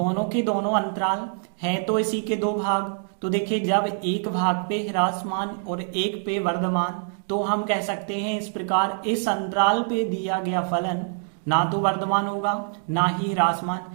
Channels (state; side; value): silent; left; 62 dB below the other